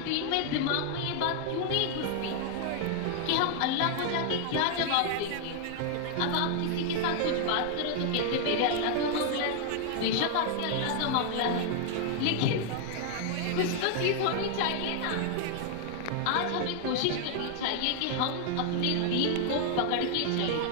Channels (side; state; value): both; different; correlation 0.00